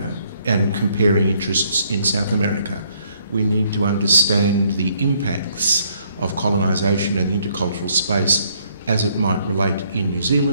and comparing interests in South America, we need to understand the impacts of colonisation and the intercultural space as it might relate in New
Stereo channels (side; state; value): both; inverted; correlation -0.67